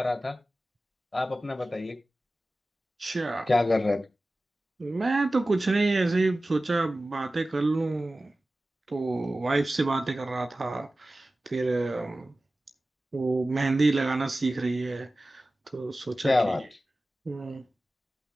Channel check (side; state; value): both; normal; correlation 0.96